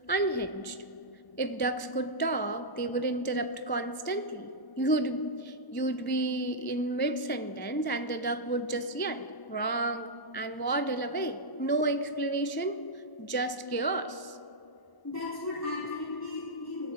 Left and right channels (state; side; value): late; right; 1.0 ms